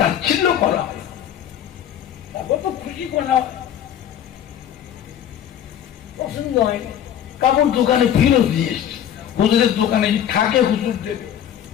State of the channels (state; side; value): quieter; right; 10.1 dB